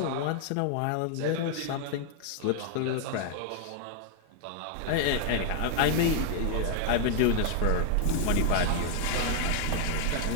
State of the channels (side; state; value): both; different; correlation 0.00